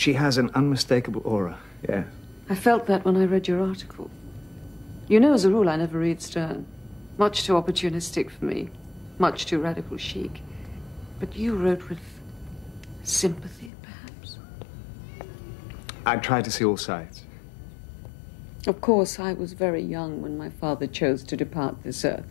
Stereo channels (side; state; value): right; drops out; at 13.7 s